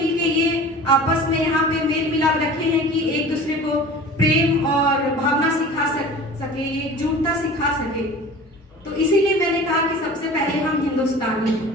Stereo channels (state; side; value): normal; both; correlation 0.40